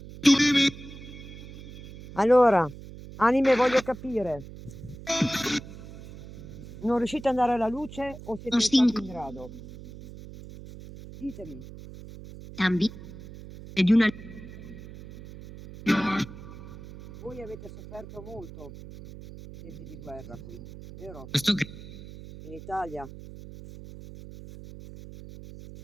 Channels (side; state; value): right; noise; hum, 15 dB below the sound